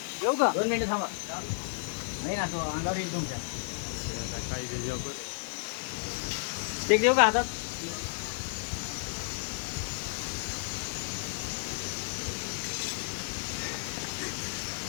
येऊ का 2 मिनिटं थांबा नाही ना तो अंगावर येईल तुमच्या काही जेव बरं ते देऊ का हातात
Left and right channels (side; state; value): right; silent; digital silence